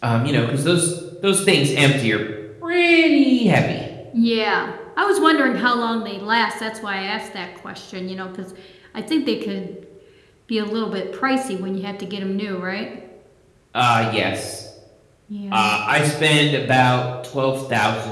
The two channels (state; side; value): identical; both; correlation 1.00